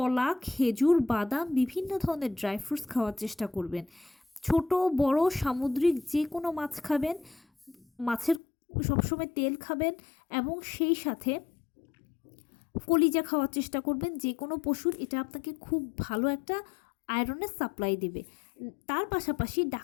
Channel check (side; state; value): right; drops out; at 8.4 s